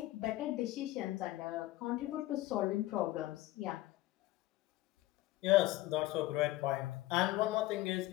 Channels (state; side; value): quieter; right; 17.2 dB